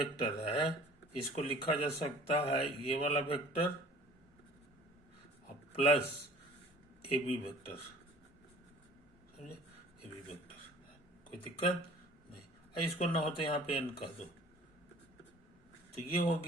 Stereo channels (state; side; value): normal; both; correlation 0.48